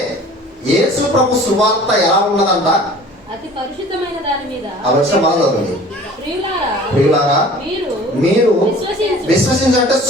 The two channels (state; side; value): normal; both; correlation 0.46